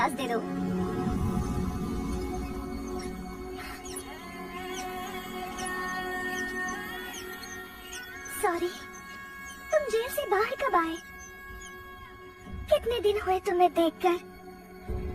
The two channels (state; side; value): identical; both; correlation 1.00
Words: दे दो। सॉरी, तुम जेल से बाहर कब आए? कितने दिन हुए तुम्हें देखकर?